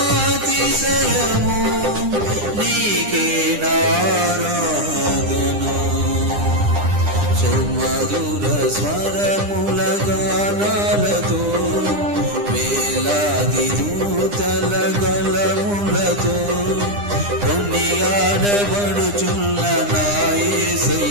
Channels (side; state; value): left; late; 9.9 ms